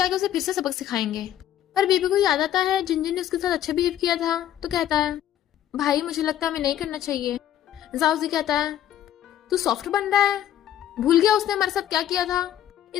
उसे फिर से सबक सिखाएंगे। पर बेबी को याद आता है जिनजिन ने उसके साथ अच्छा बिहेव किया था, तो कहता है भाई मुझे लगता है हमें नहीं करना चाहिए। जाओजी कहता है तू सॉफ्ट बन रहा है, भूल गया उसने हमारे साथ क्या किया था।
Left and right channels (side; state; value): right; quieter; 11.5 dB